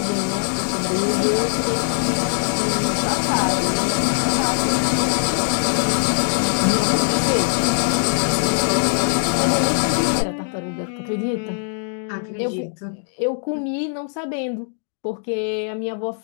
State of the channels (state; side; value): silent; right; digital silence